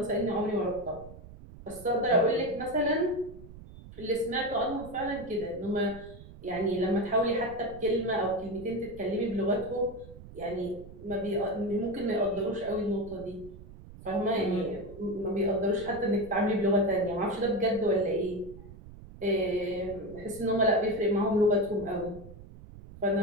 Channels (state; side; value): noise; right; rumble, 17 dB below the sound